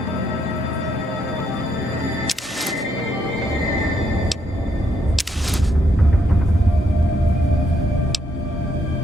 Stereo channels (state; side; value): normal; both; correlation 0.75